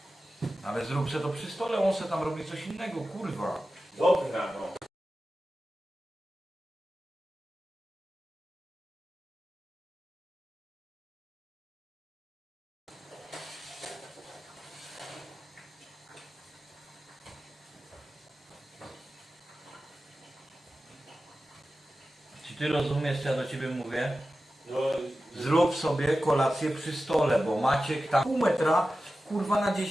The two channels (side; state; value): both; normal; correlation 0.94